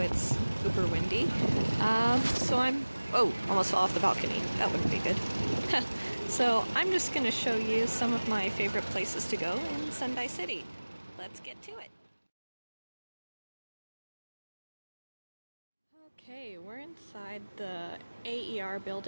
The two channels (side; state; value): both; inverted; correlation -1.00